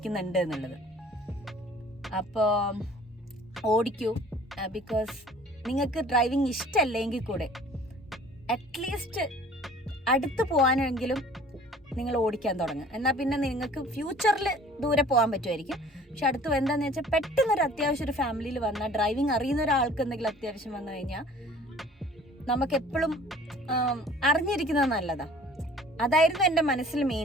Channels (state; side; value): normal; both; correlation 0.50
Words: എന്നുള്ളത്. അപ്പോൾ ഓടിക്കൂ, ബിക്കോസ് നിങ്ങൾക്ക് ഡ്രൈവിംഗ് ഇഷ്ടമല്ലെങ്കിൽ കൂടെ അറ്റ്ലീസ്റ്റ് അടുത്ത് പോകാനെങ്കിലും നിങ്ങൾ ഓടിക്കാൻ തുടങ്ങുക. എന്നാൽ പിന്നെ നിങ്ങൾക്ക് ഫ്യൂച്ചറിൽ ദൂരെ പോകാൻ പറ്റുമായിരിക്കും. പക്ഷെ അടുത്ത് എന്താണെന്ന് വെച്ചാൽ പെട്ടെന്നൊരു അത്യാവശ്യം ഒരു ഫാമിലിയിൽ വന്നാൽ, ഡ്രൈവിംഗ് അറിയുന്ന ഒരാൾക്ക് എന്തെങ്കിലും അത്യാവശ്യം വന്നു കഴിഞ്ഞാൽ നമുക്കെപ്പോഴും അറിഞ്ഞിരിക്കുന്നത് നല്ലതാണ്. അതായിരുന്നു എൻ്റെ മനസ്സിൽ